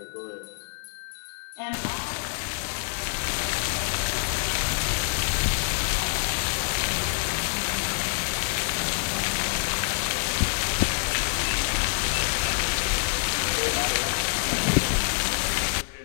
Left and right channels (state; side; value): silent; right; 56 dB below the other